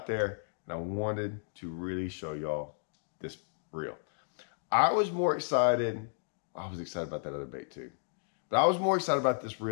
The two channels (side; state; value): right; silent; digital silence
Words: there and I wanted to really show y'all this reel. I was more excited. I was excited about that other bait too. But I was more excited about this